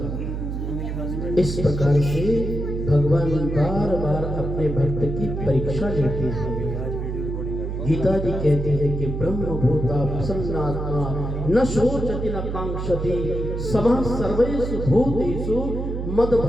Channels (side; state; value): right; noise; hum, 4 dB below the sound